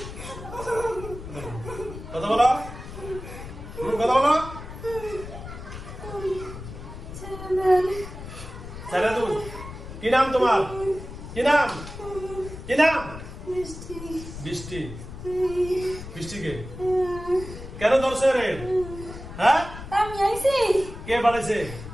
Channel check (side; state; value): left; noise; rumble, 11 dB below the sound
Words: কথা বলো কথা বলো। ছেলে তুমি কি নাম তোমার? কি নাম? কি নাম? বৃষ্টি। বৃষ্টিকে কেন ধরছে রে? হ্যাঁ আমি আইছি। কে পাঠাইছে?